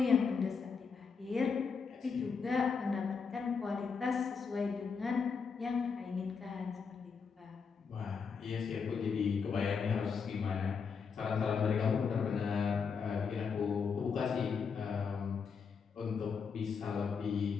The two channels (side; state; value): right; quieter; 5.7 dB